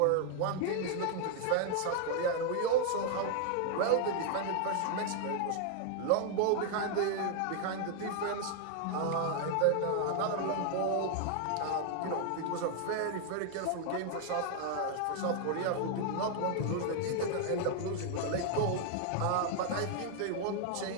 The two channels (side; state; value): both; different; correlation 0.00